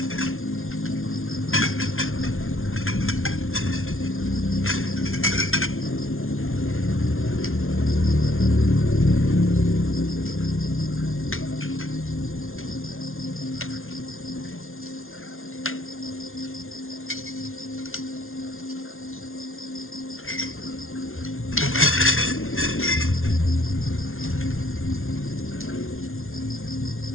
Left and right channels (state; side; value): late; right; 0.61 ms